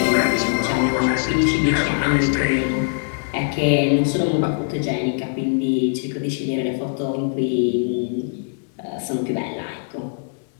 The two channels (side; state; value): right; silent; digital silence